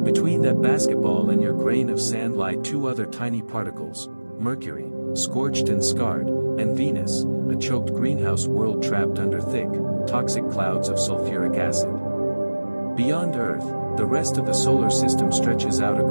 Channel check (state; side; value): inverted; both; correlation -1.00